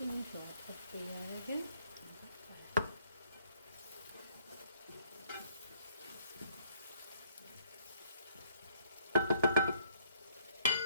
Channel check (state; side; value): inverted; both; correlation -0.65